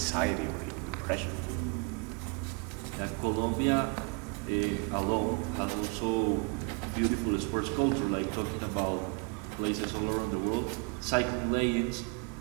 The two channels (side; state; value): left; quieter; 32.7 dB